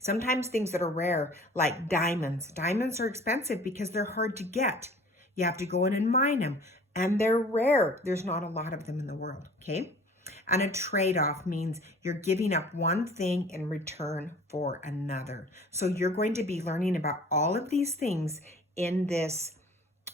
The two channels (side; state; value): both; normal; correlation 0.48